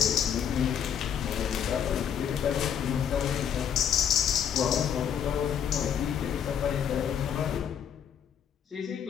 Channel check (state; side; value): quieter; right; 8.5 dB